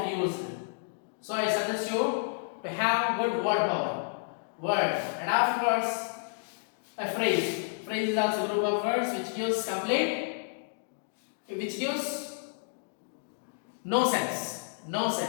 used. So I suggest you to have good word power. Word. And afterwards, a phrase. Phrase is also a group of words which gives which gives no sense. No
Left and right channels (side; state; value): right; silent; digital silence